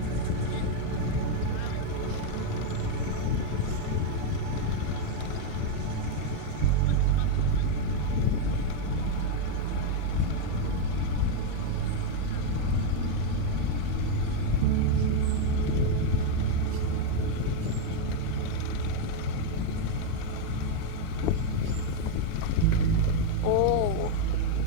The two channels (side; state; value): both; different; correlation 0.01